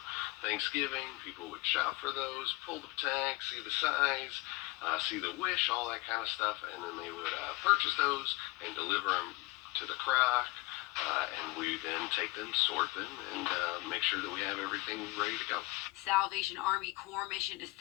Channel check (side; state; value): right; quieter; 22.9 dB